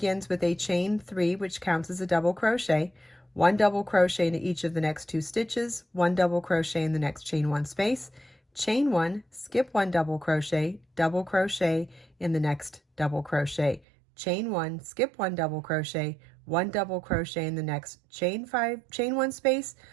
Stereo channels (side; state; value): left; drops out; at 13.8 s